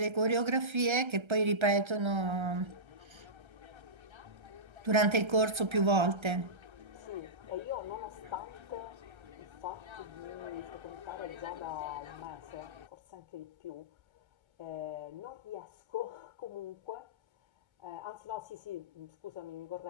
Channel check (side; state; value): left; late; 1.3 ms